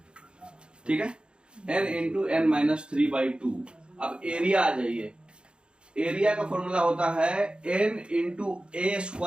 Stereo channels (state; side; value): late; left; 0.053 ms